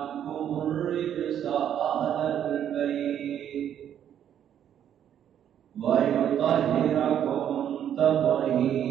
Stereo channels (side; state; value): left; quieter; 9.8 dB